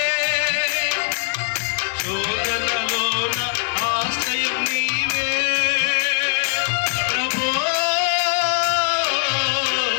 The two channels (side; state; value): right; silent; digital silence